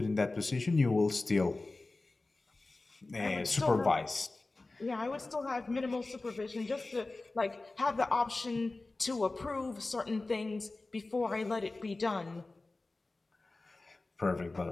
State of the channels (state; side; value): quieter; right; 3.2 dB